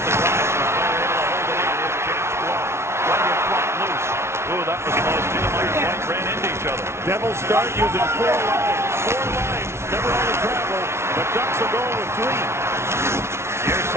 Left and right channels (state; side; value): late; left; 0.13 ms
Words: the glass. The player able to hold it in. Here's James Blood. Running flat loose. Ooh, that was close. Niedermeyer and White ran into each other. Devils start using 4 lines. 4 lines. Never on the travel. The Ducks are going with 3. Near